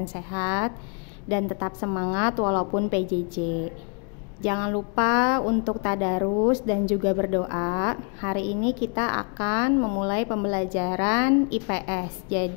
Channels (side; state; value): right; quieter; 38.5 dB